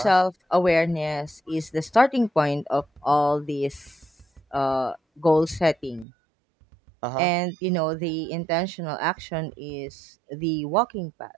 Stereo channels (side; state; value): left; drops out; at 6.1 s